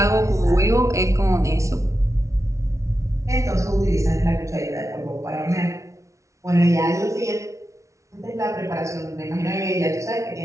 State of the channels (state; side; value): late; left; 0.14 ms